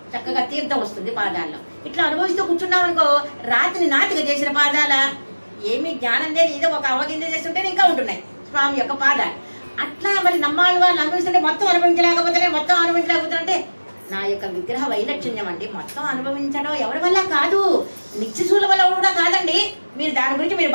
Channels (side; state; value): both; inverted; correlation -1.00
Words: చక్కగా తీర్థం వస్తుంది పాదాల్లో. ఇట్లా అనుభవిస్తూ కూర్చున్నాం అనుకో, రాత్రిని నాతిగా చేసిన పాదాల, ఏమి జ్ఞానం లేదు, ఏదో ఒక అవగింజ చేస్తుంటే ఇంకా ఉంటున్నాయి స్వామి యొక్క పాదాలు. అట్లా మరి నమ్మాలి వాళ్ళు అనుభవిస్తుంటే మొత్తం అనుభవించలేకపోతే నా యొక్క విగ్రహ వైలక్షణ్యం అండి. మొత్తం అనుభవించడం ఎవరి వల్ల కాదు, నిత్యశూల వల్ల కూడా కాదండి, మీరు దాని గురించి మీరు